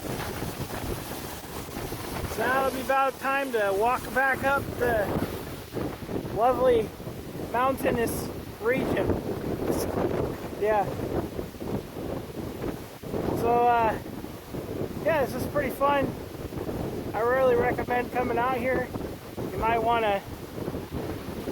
So now it'll be about time to walk back up the lovely mountainous region. Yeah. So, yeah, this is pretty fun. I really recommend coming out here. You might want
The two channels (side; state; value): both; identical; correlation 1.00